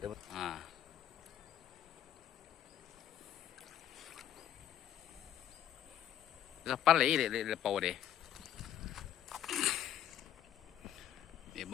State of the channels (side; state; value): right; quieter; 10.8 dB